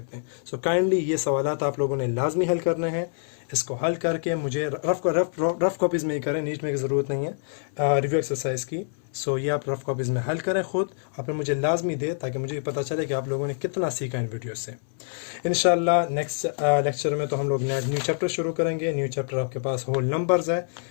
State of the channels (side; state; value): right; silent; 61 dB below the other